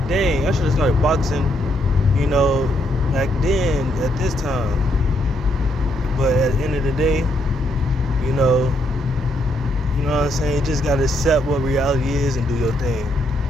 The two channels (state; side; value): normal; both; correlation 0.75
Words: dang, I should have started boxing, back then at this time. But at the end of the day, you know what I'm saying? You just gotta accept what reality is and do your thing.